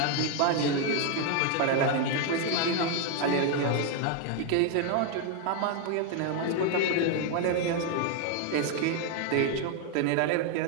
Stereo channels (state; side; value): different; both; correlation 0.01